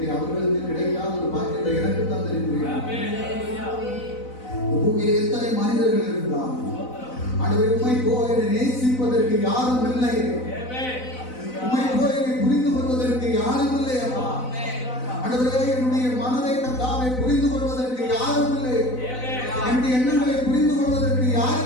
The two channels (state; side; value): late; right; 4.0 ms